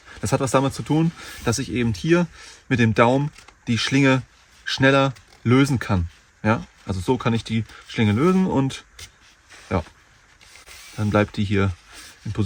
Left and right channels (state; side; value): identical; both; correlation 1.00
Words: Das hat was damit zu tun, dass ich eben hier mit dem Daumen die Schlinge schneller lösen kann. Ja, also so kann ich die Schlinge lösen und ja, dann bleibt die hier in